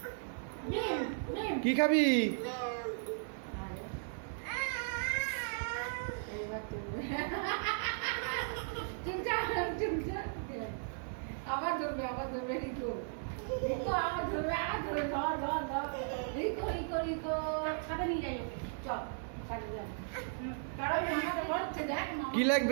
কি খাবি? আবার ধরবে, আবার ধরবে। রিকো রিকো আবার ধরবে, আবার ধরবে। ধর ধর ধর। রিকো রিকো রিকো সাথে নিয়ে যাই ওকে। চল সাথে যাই। কারণ মামা বলছে দেখ কি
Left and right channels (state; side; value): silent; left; 54 dB below the other